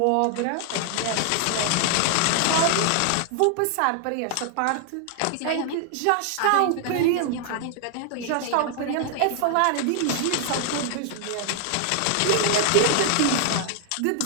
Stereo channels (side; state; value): both; different; correlation 0.00